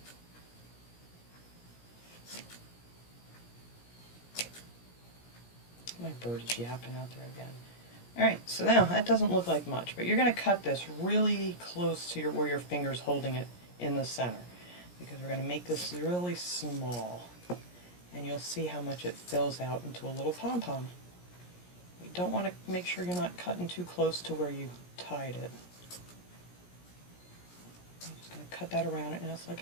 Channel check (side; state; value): right; late; 17 ms